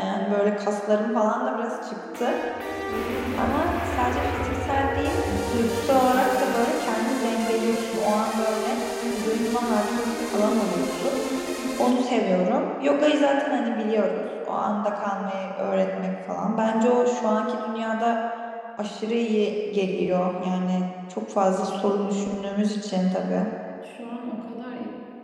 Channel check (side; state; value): both; identical; correlation 1.00